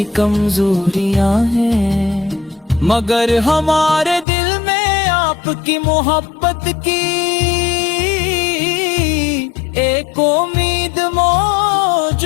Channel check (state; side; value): drops out; right; at 4.2 s